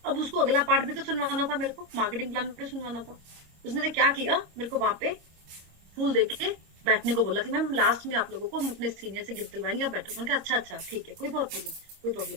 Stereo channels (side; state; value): left; late; 26 ms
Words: अब उसको अगला पार्ट भी तो सुनवाना था, मेरे को मार्केटिंग प्लान भी सुनवाना था। उसने क्या किया, मेरे को वहां पे फूल देके बैठने को बोला कि मैम लास्ट में आप लोगों को हम अपने सीनियर से गिफ्ट दिलवाएंगे, आप बैठो। मैंने कहा अच्छा अच्छा ठीक है, कोई प्रॉब्लम नहीं, कोई